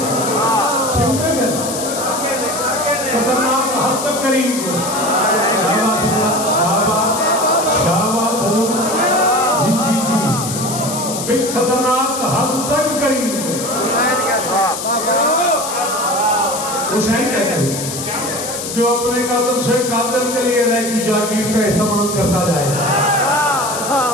खतरनाक हद तक करीम को शाबाश जी जी जी बिल खतरनाक हद तक करीम को हुसैन कहते हैं, जो अपने कातिल से कातिल के लिए रह की जागीर का एहतमाम करता जाए।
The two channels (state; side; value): noise; left; hiss, 6 dB below the sound